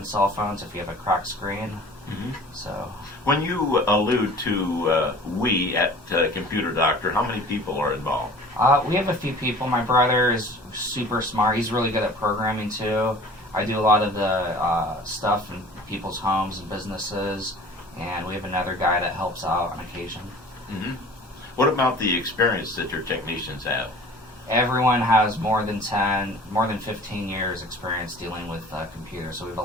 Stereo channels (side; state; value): both; normal; correlation 0.44